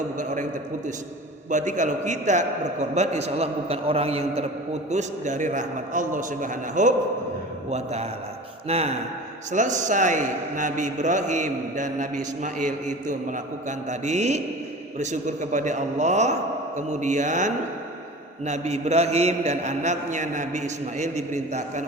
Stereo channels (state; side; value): normal; both; correlation 0.37